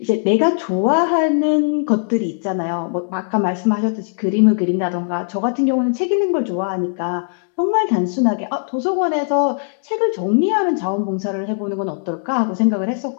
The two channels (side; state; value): right; silent; digital silence